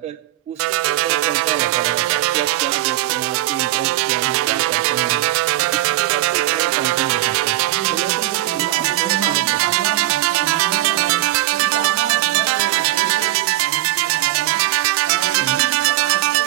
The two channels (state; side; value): quieter; left; 15.7 dB